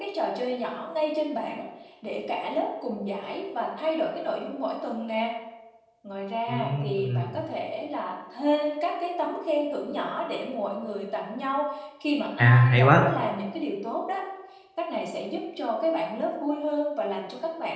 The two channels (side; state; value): both; identical; correlation 1.00